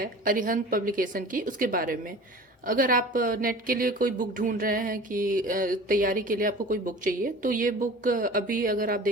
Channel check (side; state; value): both; normal; correlation 0.40